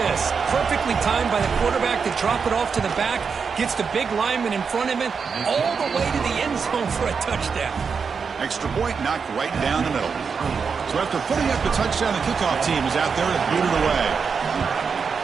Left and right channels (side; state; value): left; quieter; 5.7 dB